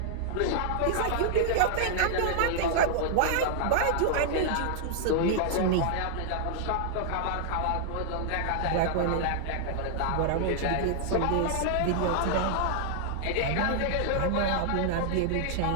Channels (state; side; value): different; both; correlation -0.01